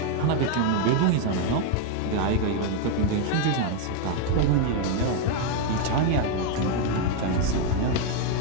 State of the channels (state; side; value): different; both; correlation 0.01